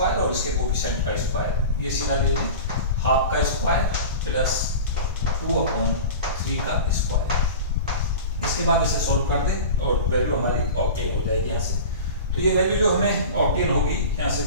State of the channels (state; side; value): inverted; both; correlation -0.33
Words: और इसके कोफिशिएंट का स्क्वायर, ये सीधा ले लें, हाफ का स्क्वायर प्लस 2/3 का स्क्वायर। इसके बाद इसे सॉल्व कर दें और वैल्यू हमारी ऑब्टेन हो जाएगी यहाँ से। तो ये वैल्यू जो हमें ऑब्टेन होगी, यहाँ से